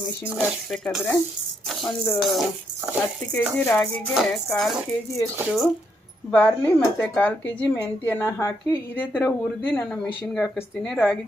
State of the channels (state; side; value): normal; both; correlation 0.76